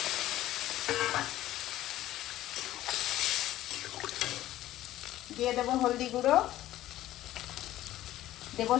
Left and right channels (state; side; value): quieter; right; 14.4 dB